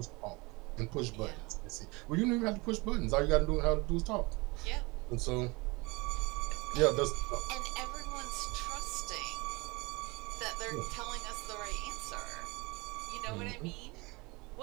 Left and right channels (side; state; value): left; quieter; 25.6 dB